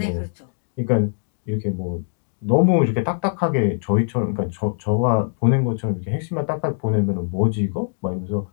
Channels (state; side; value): silent; right; digital silence